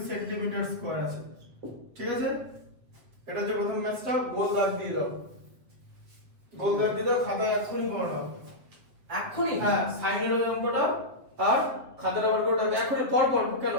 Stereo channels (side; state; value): left; late; 7.7 ms